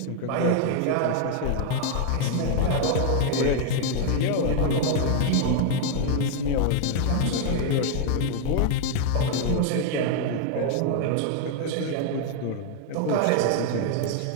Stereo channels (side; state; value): both; different; correlation 0.00